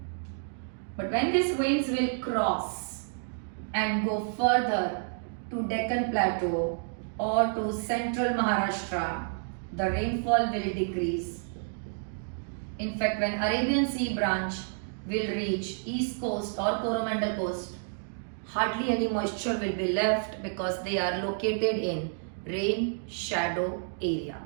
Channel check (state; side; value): silent; left; digital silence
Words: But when these winds will cross and go further to Deccan Plateau or to central Maharashtra, the rainfall will decrease. In fact, when Arabian Sea branch will reach east coast or Coromandel coast, hardly any moisture will be left because they are located in rain shadow area.